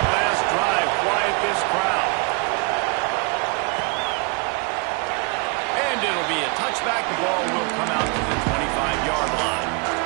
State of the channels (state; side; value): quieter; left; 31.6 dB